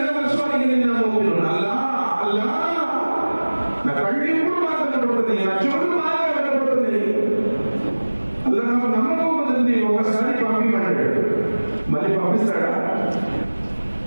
నవస్వాలిన ముమినున్. అల్లాహ్ నా కళ్ళు ఎప్పుడు బాగా కనబడుతుంది, నా చెవులు బాగా కనబడుతుంది. అల్లాహ్ నాకు నమ్మకం ఉంది, ఒకసారి పంపిమన్నాడు, మళ్ళీ పంపిస్తాడా?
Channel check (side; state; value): both; inverted; correlation -1.00